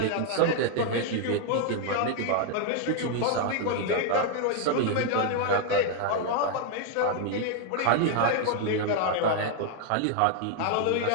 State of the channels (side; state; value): both; different; correlation 0.00